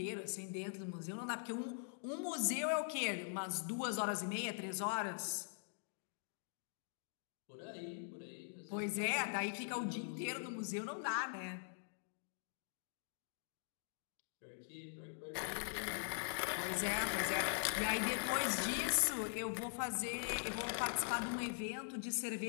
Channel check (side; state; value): right; silent; digital silence